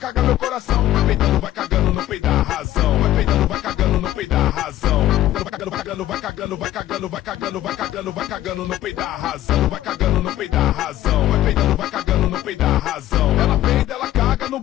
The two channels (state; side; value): quieter; right; 13.7 dB